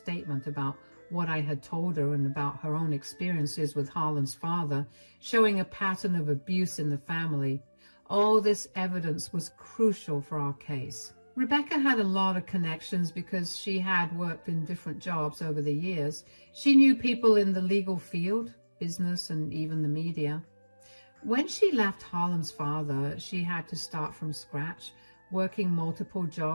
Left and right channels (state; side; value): inverted; both; correlation -1.00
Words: about what I had told her and about her own experiences with Harlan's father, showing a pattern of abuse in the family. All this evidence was crucial for our case. Rebecca had a lot of connections because she had worked in different jobs over the years. She knew people in the legal field, business, and even the media. When she left Harlan's father, she had to start from scratch, working multiple